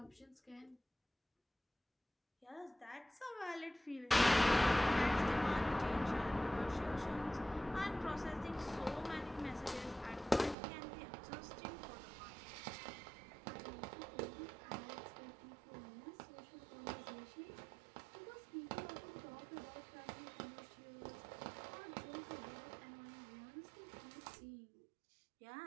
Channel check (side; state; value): left; drops out; at 10.6 s